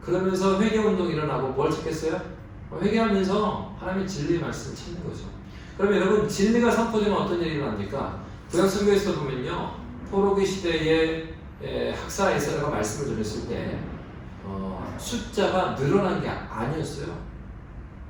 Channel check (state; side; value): identical; both; correlation 1.00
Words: 그러면서 회개 운동이 일어나고 뭘 찾겠어요? 회개하면서 하나님의 진리의 말씀을 찾는 거죠. 그럼 여러분 진리가 선포되면 어떤 일이 일어납니까? 구약 성경에서 보면요 포로기 시대에 학사 에스라가 말씀을 전했을 때 숫자가 늘어난 게 아니었어요.